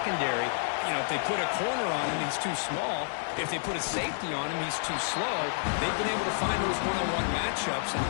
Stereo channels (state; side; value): silent; right; digital silence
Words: you know, if they put a corner on him, he's too small. If they put a safety on him, he's too slow. They've been able to find those one-on-one matchups and